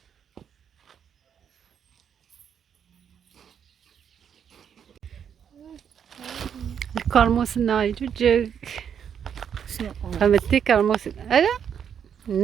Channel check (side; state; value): left; quieter; 8.1 dB